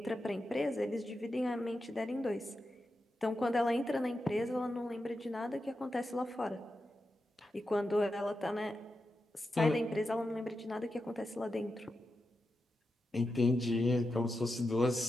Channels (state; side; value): normal; both; correlation 0.89